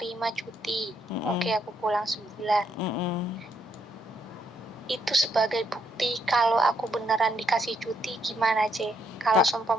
cuti, oke, aku pulang sebulan. Itu sebagai bukti kalau aku beneran dikasih cuti gimana, C? Kalau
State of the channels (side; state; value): both; normal; correlation 0.74